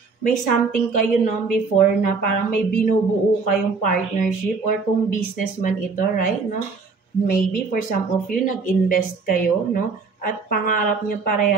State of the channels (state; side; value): quieter; left; 4.6 dB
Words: may something kayo, no, before na parang may binubuo kayong partnership or kung businessman ito, right, no? Maybe for some of you, nag-invest kayo, no? At pangarap niyo